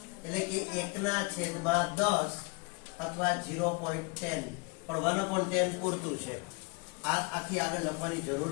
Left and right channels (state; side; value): quieter; right; 30.9 dB